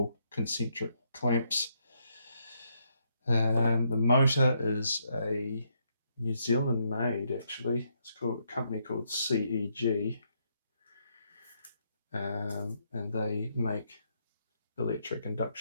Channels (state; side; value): inverted; both; correlation -0.76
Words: concentric clamps. The motor is a New Zealand made, actually. It's called a company called CEG, and they make electric